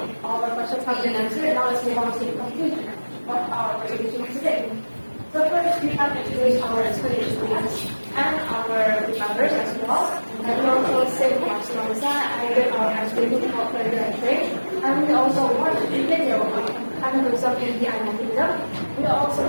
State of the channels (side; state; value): both; inverted; correlation -1.00